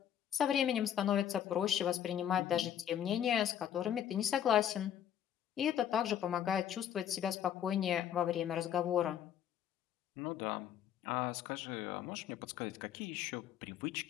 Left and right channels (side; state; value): right; quieter; 9.9 dB